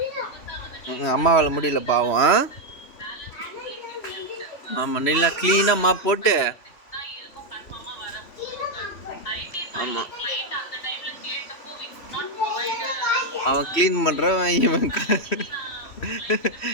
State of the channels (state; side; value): late; right; 3.0 ms